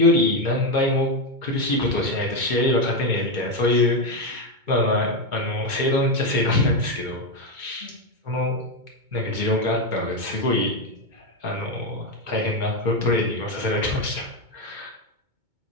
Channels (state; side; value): late; left; 2.2 ms